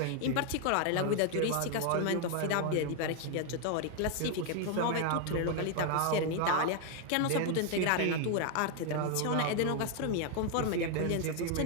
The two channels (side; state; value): both; different; correlation 0.00